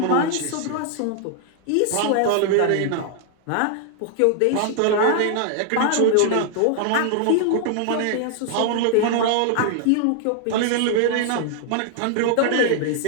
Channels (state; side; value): different; both; correlation 0.00